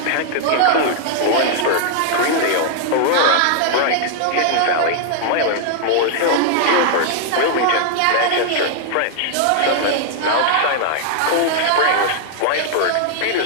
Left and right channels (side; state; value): both; different; correlation -0.01